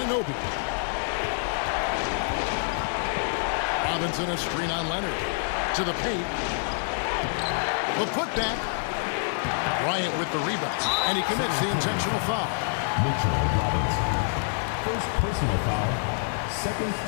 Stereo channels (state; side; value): silent; right; digital silence